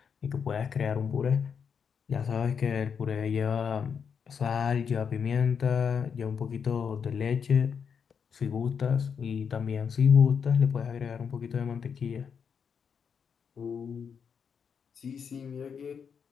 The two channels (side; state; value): right; quieter; 6.8 dB